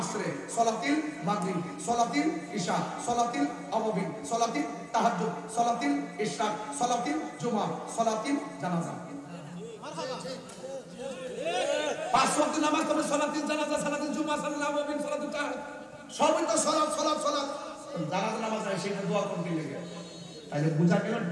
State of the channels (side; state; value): both; identical; correlation 1.00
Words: সালাতিল মাগরিব, সালাতিল ইশা, সালাতিল আওয়াবিন, সালাতিল তাহাজ্জুদ, সালাতিল ইশরাক, সালাতিল জুমা, সালাতিল জানাজা। মারহাবা। 5 ওয়াক্ত নামাজ তবে সালাতিল জানাজা, সালাতিল জুমা, সালাতিল আওয়াবিন, সালাতিল তাহাজ্জুদ, সবই তো সালাত সালাত সালাত। জানাজা নামাজ আছে সেটা দোয়া করতে লাগে, তাহলে বুঝা গেল